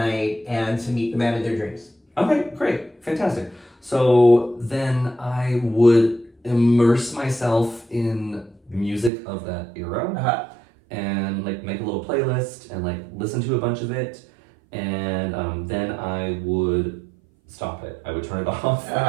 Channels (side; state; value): left; drops out; at 9.1 s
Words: and to meet the man of their dreams. Okay, great, fantastic. So then I would immerse myself in music of that era, and like make a little playlist and like listen to a bunch of it, and then I would stop it. I would turn it off